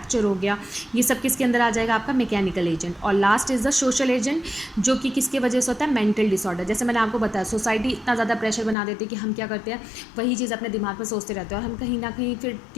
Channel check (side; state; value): right; drops out; at 8.8 s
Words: हो गया, ये सब किसके अंदर आ जाएगा, आपका मैकेनिकल एजेंट। और last is the social agent, जो कि किसके वजह से होता है, मेंटल डिसऑर्डर। जैसे मैंने आपको बताया, सोसाइटी इतना ज़्यादा प्रेशर बना देती है कि हम क्या करते हैं, वही चीज़ अपने दिमाग में सोचते रहते हैं और हम कहीं ना कहीं फिर